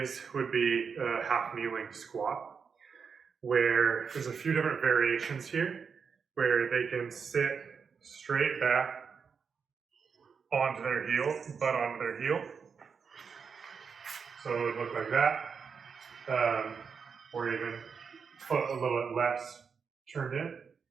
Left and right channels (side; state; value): left; quieter; 6.0 dB